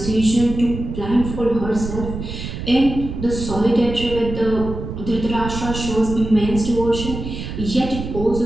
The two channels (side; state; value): right; noise; rumble, 7 dB below the sound